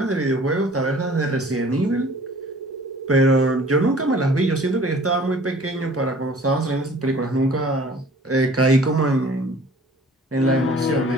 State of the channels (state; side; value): normal; both; correlation 0.50